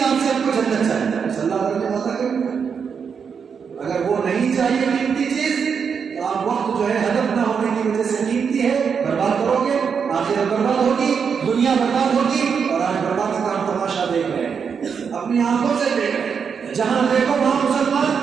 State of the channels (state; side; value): quieter; left; 6.4 dB